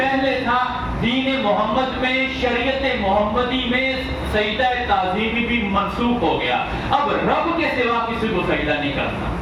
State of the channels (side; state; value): both; identical; correlation 1.00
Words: تھا دین محمد میں, شریعت محمدی میں سجدہ تعظیمی بھی منسوخ ہو گیا. اب رب کے سوا کسی کو سجدہ نہیں کرنا.